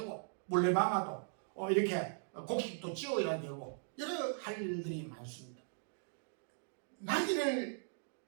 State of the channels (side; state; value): left; silent; digital silence